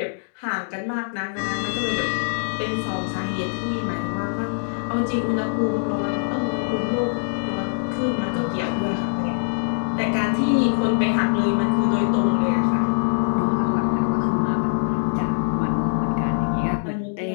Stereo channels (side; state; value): right; silent; digital silence